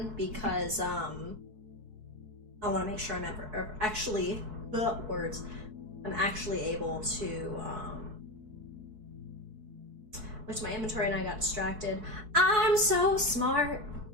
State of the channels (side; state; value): left; late; 4.6 ms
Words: because I want to make sure I'm actually I'm actually able to look to my inventory and I got distracted. I'm so smart.